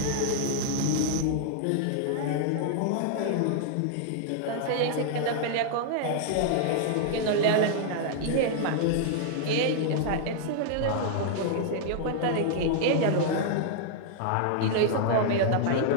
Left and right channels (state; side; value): different; both; correlation -0.01